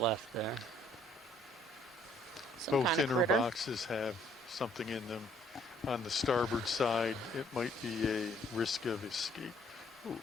there? Both kind of inner critter. boxes have something in them. On the starboard side, it might be a risk of escape. Ooh,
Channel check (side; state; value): both; normal; correlation 0.63